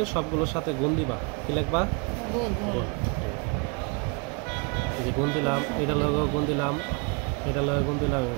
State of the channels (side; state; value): left; quieter; 32.6 dB